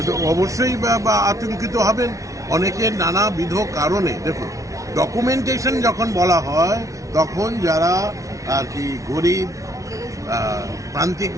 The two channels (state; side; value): late; left; 0.16 ms